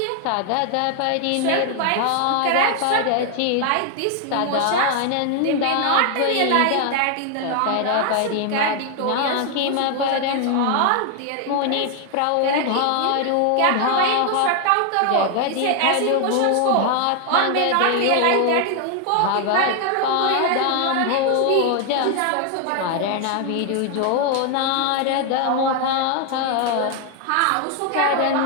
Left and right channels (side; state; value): both; different; correlation 0.00